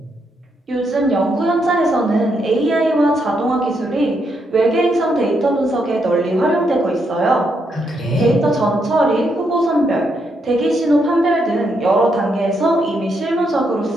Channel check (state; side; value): normal; both; correlation 0.78